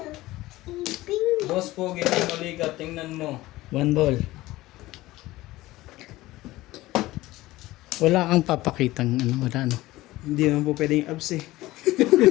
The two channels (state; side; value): quieter; right; 17.8 dB